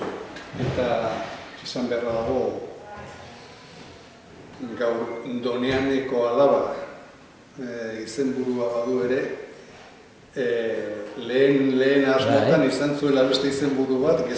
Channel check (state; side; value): identical; both; correlation 1.00